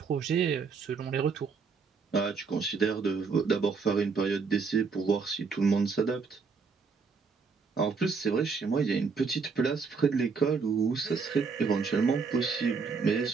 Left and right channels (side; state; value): left; quieter; 5.1 dB